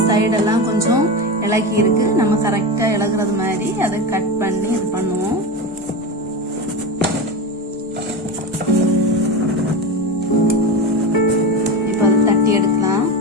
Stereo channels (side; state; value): both; normal; correlation 0.21